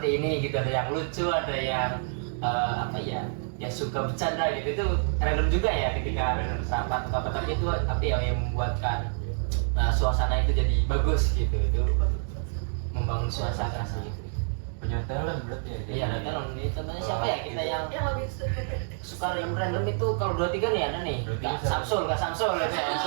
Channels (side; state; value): left; silent; digital silence